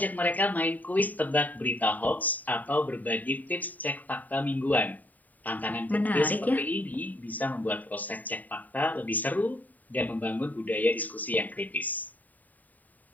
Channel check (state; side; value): late; right; 0.081 ms